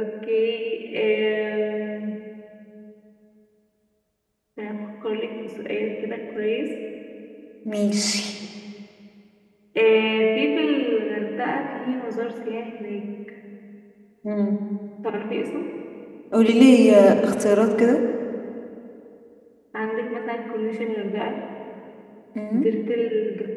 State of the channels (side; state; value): both; identical; correlation 1.00